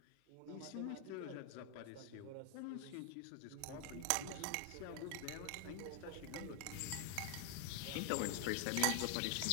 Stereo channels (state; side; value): different; both; correlation 0.00